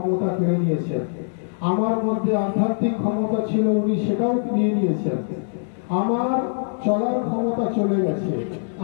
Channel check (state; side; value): silent; right; digital silence